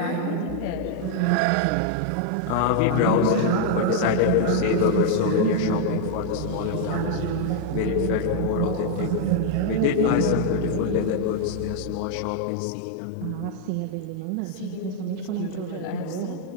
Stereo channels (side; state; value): both; different; correlation 0.00